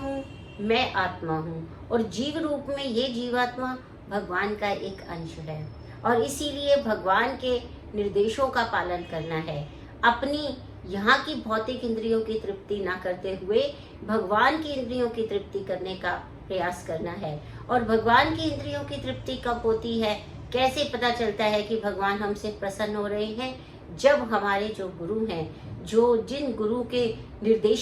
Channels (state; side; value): identical; both; correlation 1.00